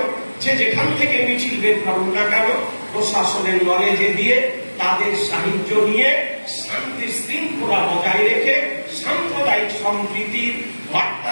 যে যেখান থেকে মিছিল বের করুন না কেন, প্রশাসনের নলেজে দিয়ে তাদের সাহায্য নিয়ে শান্তি শৃঙ্খলা বজায় রেখে সাম্প্রদায়িক সম্প্রীতির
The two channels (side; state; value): both; inverted; correlation -1.00